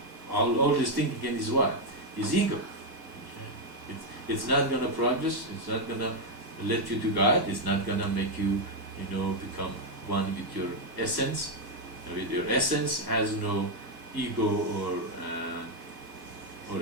all this thing again is what? Is ego. It's not going to progress. It's not going to let you to God. It's not going to make you, become one with your essence. With your essence has no ego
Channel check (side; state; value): left; late; 1.1 ms